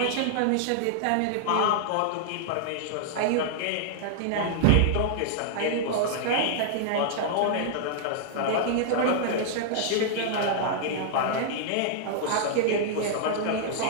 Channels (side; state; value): both; different; correlation -0.01